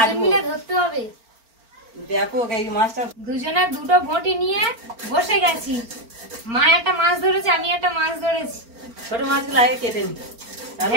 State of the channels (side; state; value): left; late; 4.4 ms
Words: মিলে ধরতে হবে। ব্যাপক এই মাছটা। দুজনে দুটো বটি নিয়ে বসে গেছি। মা একটা মাছ ধরেছে, আমি একটা মাছ ধরেছি। ছোট মাছগুলো আগে কেটে নি, তাহলে